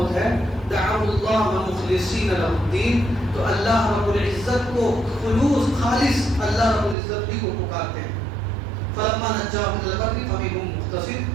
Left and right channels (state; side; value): drops out; left; at 7.0 s